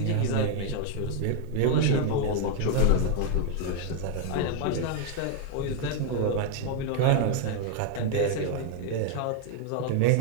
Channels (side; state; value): both; different; correlation 0.00